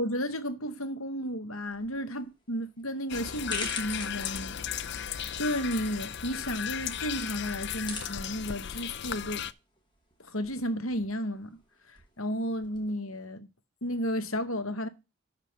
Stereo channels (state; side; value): normal; both; correlation 0.28